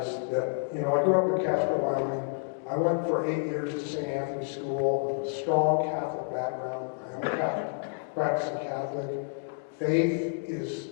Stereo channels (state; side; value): silent; right; digital silence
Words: is that, you know, I grew up in Casper, Wyoming. I went for 8 years to St. Anthony's School with a strong Catholic background. I am a Catholic, practicing Catholic. Faith is